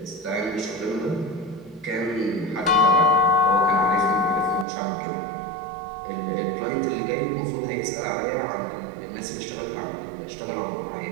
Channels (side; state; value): left; drops out; at 4.7 s